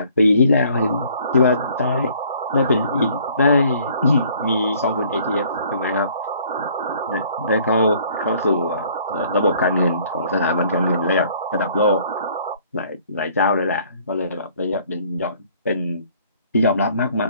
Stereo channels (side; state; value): both; inverted; correlation -0.59